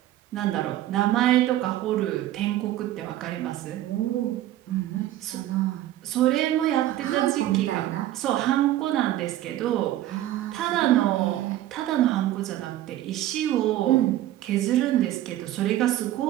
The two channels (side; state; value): left; quieter; 13.8 dB